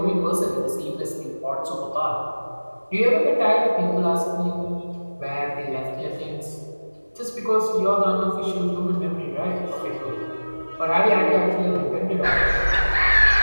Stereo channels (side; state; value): both; inverted; correlation -1.00